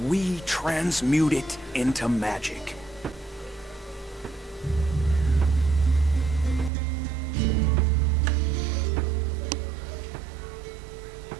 we transmute it into magic.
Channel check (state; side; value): drops out; left; at 6.7 s